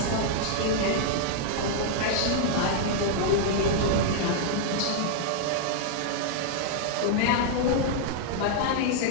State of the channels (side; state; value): both; different; correlation -0.01